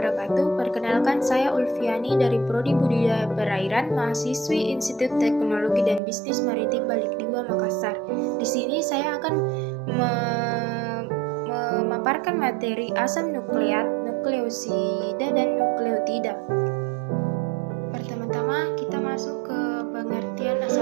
Perkenalkan, saya Ulfiani dari Prodi Budidaya Perairan, mahasiswi Institut Teknologi dan Bisnis Maritim Balik 2 Makassar. Di sini saya akan memaparkan materi asam nukleat, nukleosida, dan nukleotida. Pertama-tama kita masuk ke pengertian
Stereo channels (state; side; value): drops out; left; at 6.0 s